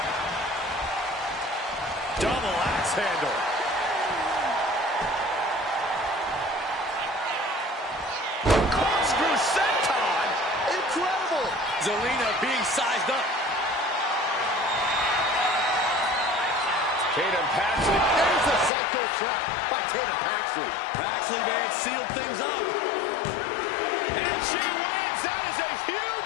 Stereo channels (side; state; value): right; drops out; at 18.7 s